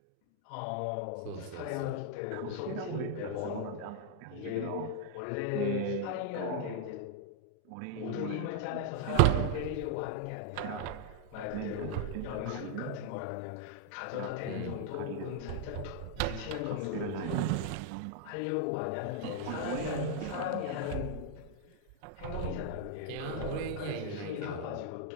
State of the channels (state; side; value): different; both; correlation 0.00